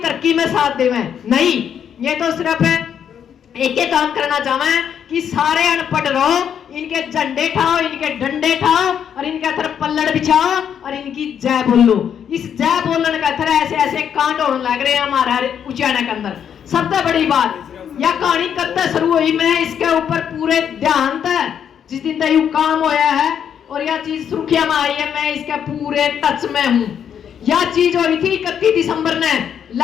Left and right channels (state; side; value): quieter; right; 8.5 dB